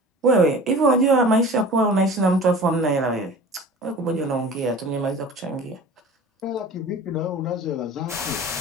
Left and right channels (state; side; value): normal; both; correlation 0.40